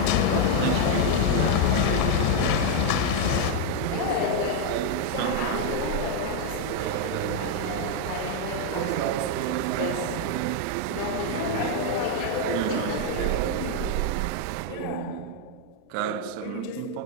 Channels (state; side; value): different; both; correlation 0.00